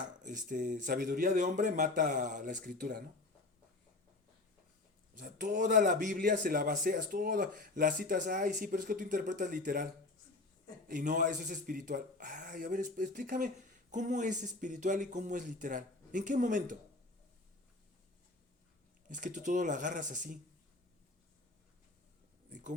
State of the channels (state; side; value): quieter; right; 3.1 dB